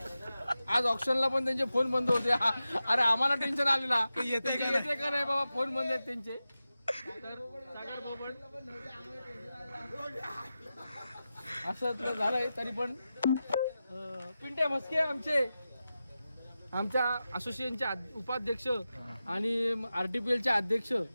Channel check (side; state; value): both; inverted; correlation -0.93